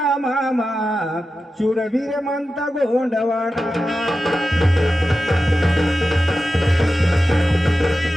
मामा शूरवीर म्हणता गोंडवाना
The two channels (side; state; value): both; normal; correlation 0.92